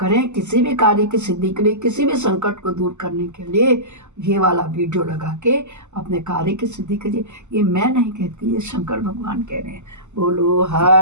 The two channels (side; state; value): left; late; 0.83 ms